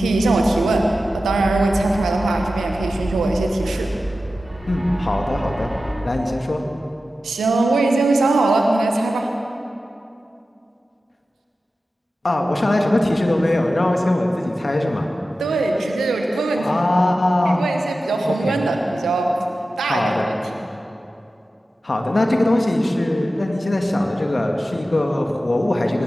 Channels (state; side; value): normal; both; correlation 0.94